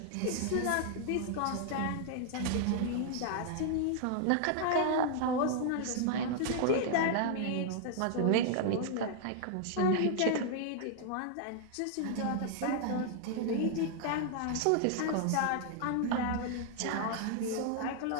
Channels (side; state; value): both; different; correlation 0.00